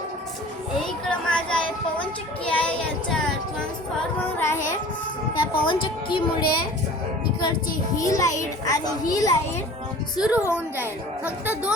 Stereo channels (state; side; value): normal; both; correlation 0.43